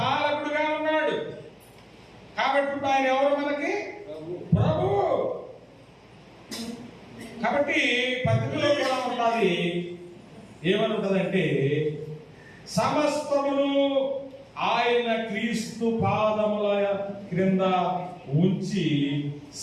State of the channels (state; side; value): identical; both; correlation 1.00